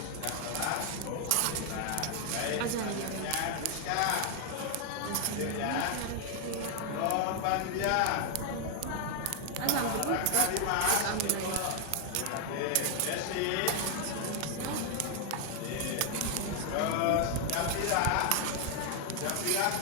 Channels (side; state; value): both; different; correlation 0.00